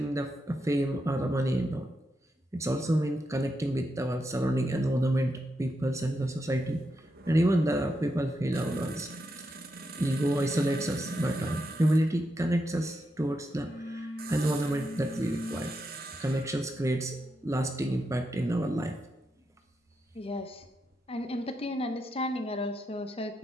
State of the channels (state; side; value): normal; both; correlation 0.84